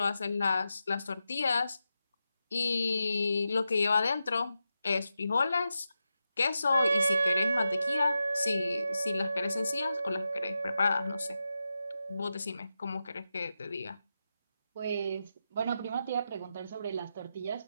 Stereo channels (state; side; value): inverted; both; correlation -0.89